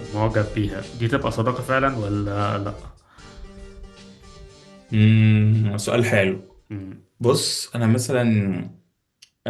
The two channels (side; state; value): both; identical; correlation 1.00